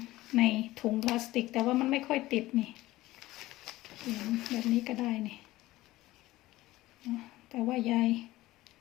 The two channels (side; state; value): right; quieter; 17.3 dB